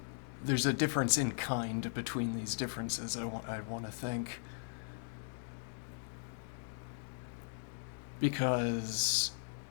there's a difference in kind between these differences, I want to think. Because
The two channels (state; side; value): silent; right; digital silence